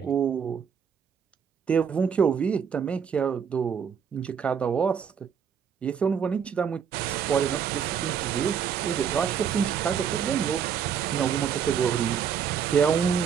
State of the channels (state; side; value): quieter; left; 7.5 dB